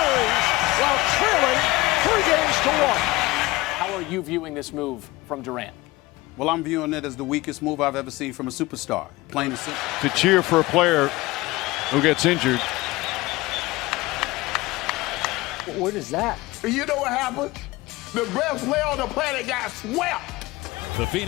while trailing 3 games to 1. How are you viewing this move from Durant? Well, I'm viewing it as the weakest move I've ever seen from a superstar. Plain and simple. To cheer for a player who gets injured. What is that? You know what happened? The best player on the planet got swept. The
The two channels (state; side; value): quieter; right; 20.3 dB